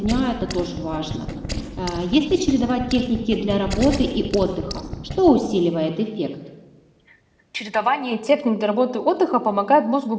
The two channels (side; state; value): both; identical; correlation 1.00